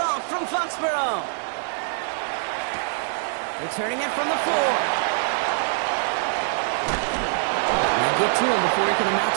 from Foxborough. Returning it from the floor. They get to him before he can amount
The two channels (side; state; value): left; silent; digital silence